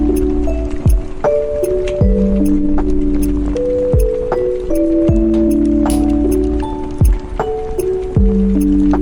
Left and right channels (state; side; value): identical; both; correlation 1.00